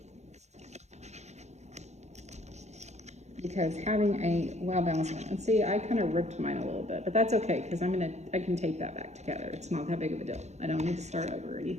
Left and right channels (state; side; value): late; left; 0.33 ms